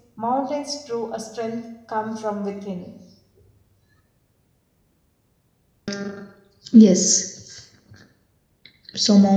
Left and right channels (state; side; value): identical; both; correlation 1.00